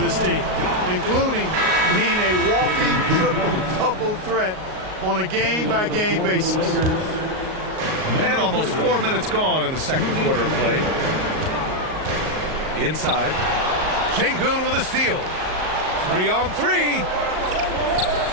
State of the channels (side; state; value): left; late; 38 ms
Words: team, including being a walking triple-double threat on a game-by-game basis. And almost 4 minutes gone in the second quarter of play. Inside. Şengün with a steal. 3 on 3.